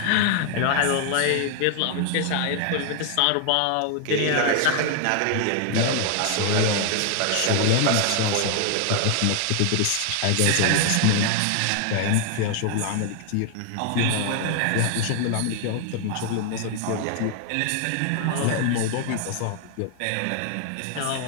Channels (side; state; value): both; different; correlation 0.00